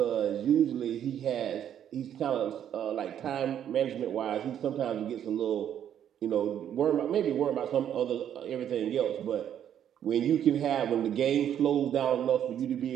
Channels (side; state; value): left; quieter; 9.8 dB